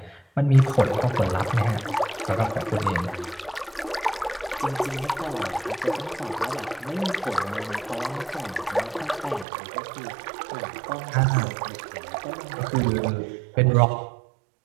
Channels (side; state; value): left; drops out; at 9.5 s